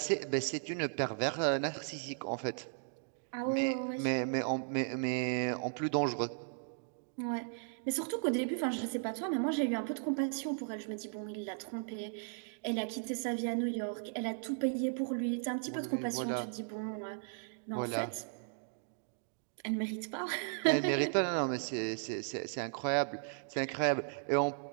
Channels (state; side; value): silent; left; digital silence